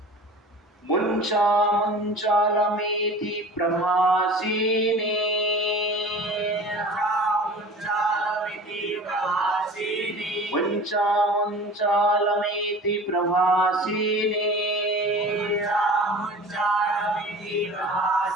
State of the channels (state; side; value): normal; both; correlation 0.40